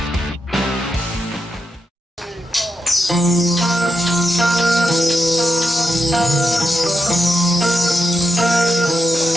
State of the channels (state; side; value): normal; both; correlation 0.85